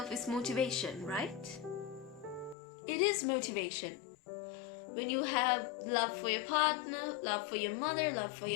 is motivation, right? It is motivation. When you have love for your partner, love for your mother, love for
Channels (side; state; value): right; drops out; at 2.6 s